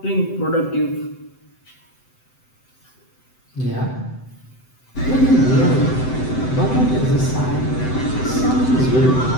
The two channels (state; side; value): late; right; 7.8 ms